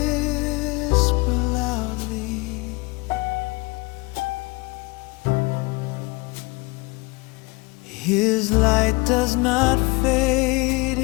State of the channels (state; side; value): quieter; right; 25.7 dB